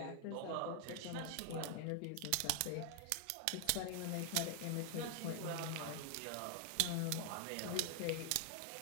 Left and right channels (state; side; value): different; both; correlation 0.00